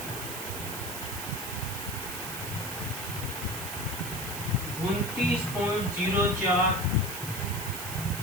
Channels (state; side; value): noise; right; hiss, 7 dB below the sound